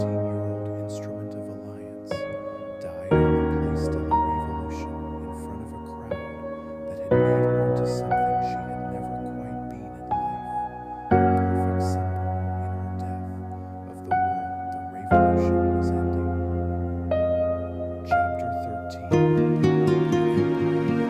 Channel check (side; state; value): both; identical; correlation 1.00